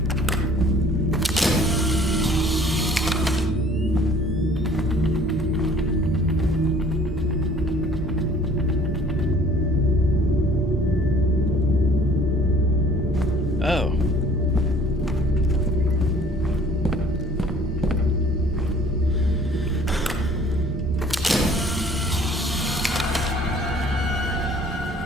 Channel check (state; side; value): normal; both; correlation 0.53